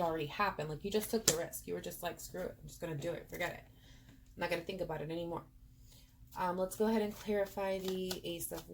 already happened. Like you just took the risk. You were just like, screw it, I'm just going to do it. Forget it. I'm not going to think about it anymore. Let's go ahead and clarify the Ace of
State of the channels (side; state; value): both; identical; correlation 1.00